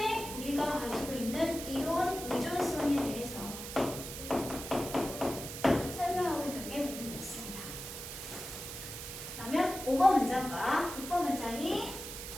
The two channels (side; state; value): right; noise; hiss, 9 dB below the sound